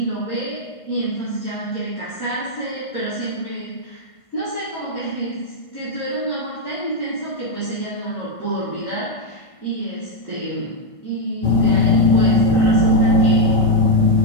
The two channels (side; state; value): right; late; 1.5 ms